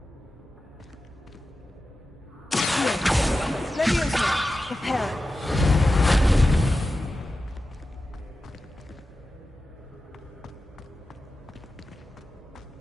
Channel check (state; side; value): normal; both; correlation 0.93